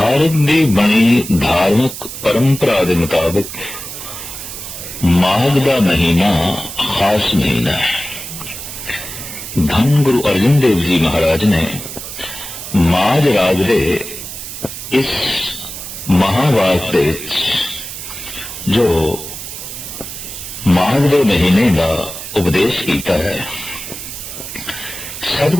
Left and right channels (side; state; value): right; noise; hiss, 10 dB below the sound